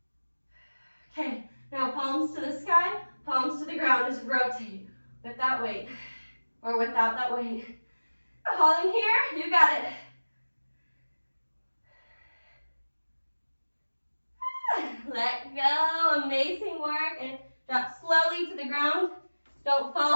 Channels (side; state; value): both; inverted; correlation -1.00